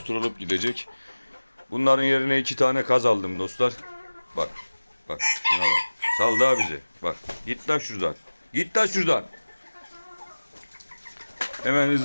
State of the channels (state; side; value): inverted; both; correlation -1.00